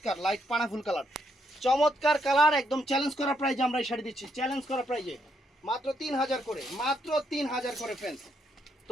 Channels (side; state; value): both; normal; correlation 0.75